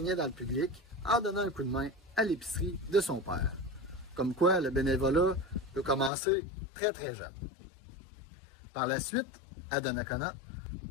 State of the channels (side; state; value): right; drops out; at 6.1 s